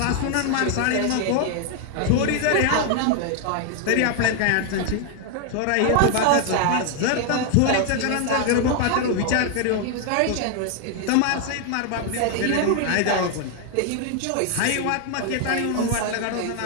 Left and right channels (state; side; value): different; both; correlation 0.00